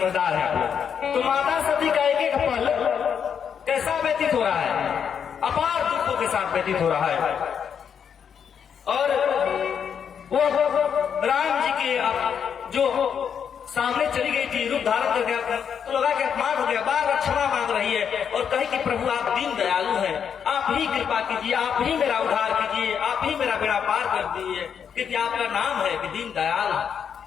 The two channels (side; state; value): right; quieter; 7.6 dB